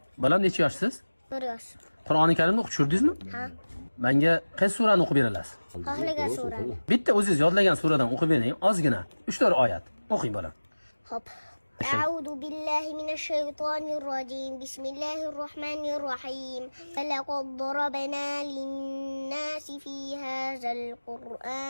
Balam necha yoshsiz? 1 yosh. Qur'oni Karimni o'qib tushirdingizmi? Ha. Menga qaysi surani o'qib berasiz? Xohlagan surani. Bitta o'zingiz yodlagan suradan o'qib bering, ozgina. 3-4 oyat. O'qing bolam. Hop. أعوذ بالله من الشيطان الرجيم بسم الله الرحمن الرحيم ولقد ضربنا للناس في هذا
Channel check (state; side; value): inverted; both; correlation -1.00